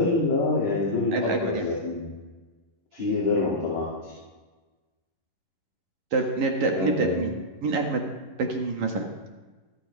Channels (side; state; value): left; late; 11 ms